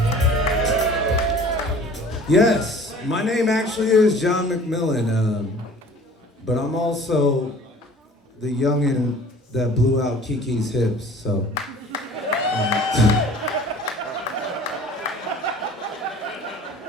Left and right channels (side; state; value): both; normal; correlation 0.47